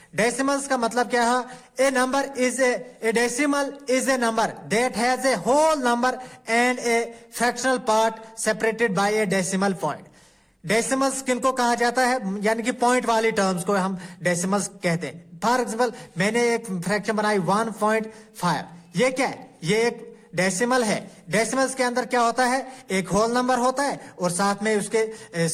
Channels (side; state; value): both; identical; correlation 1.00